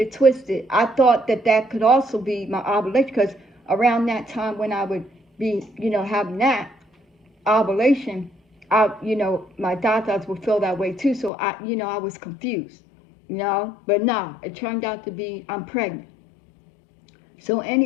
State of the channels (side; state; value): right; drops out; at 11.3 s